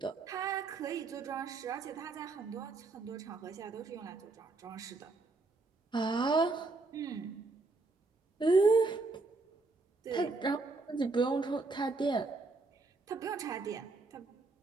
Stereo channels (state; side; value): quieter; left; 3.6 dB